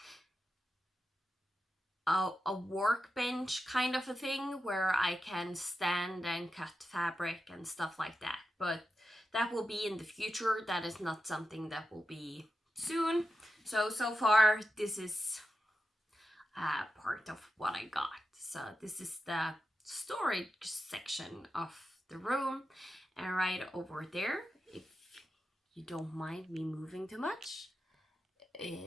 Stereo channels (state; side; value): normal; both; correlation 0.90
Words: a workbench kind of a thing where I can stand and cut fabric and stuff like that. But that will be in the future. That is not something that will be soon. So far, this is part of what I got. So this is the storage section of the room. And right over there, if you don't mind me moving too much,